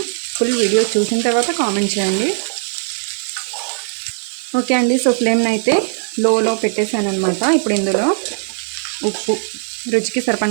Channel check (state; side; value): silent; left; 67 dB below the other